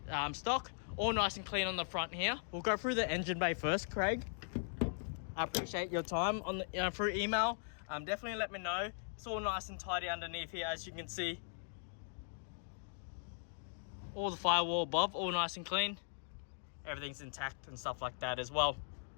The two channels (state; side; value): silent; right; digital silence